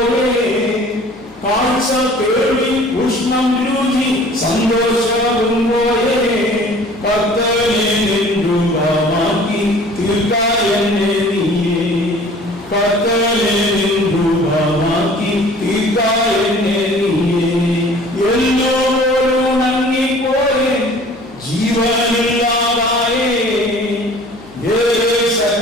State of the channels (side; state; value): left; noise; hum, 28 dB below the sound